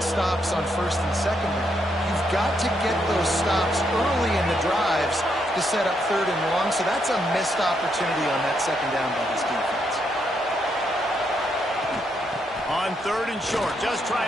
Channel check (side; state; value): both; normal; correlation 0.77